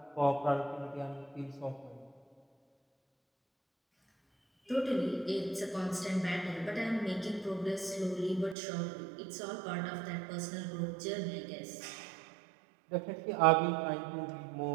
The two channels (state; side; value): drops out; left; at 8.6 s